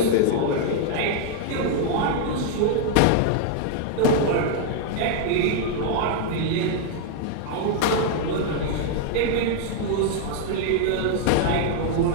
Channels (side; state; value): both; different; correlation 0.00